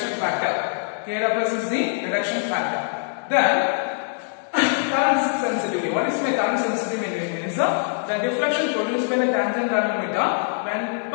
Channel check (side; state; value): right; silent; digital silence